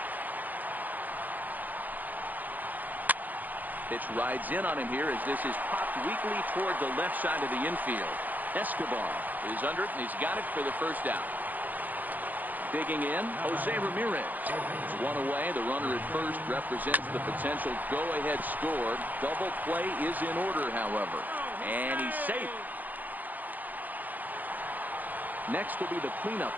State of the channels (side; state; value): left; late; 0.083 ms